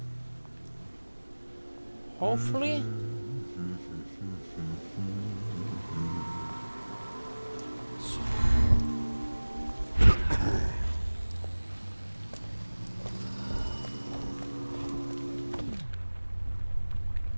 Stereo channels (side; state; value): both; inverted; correlation -1.00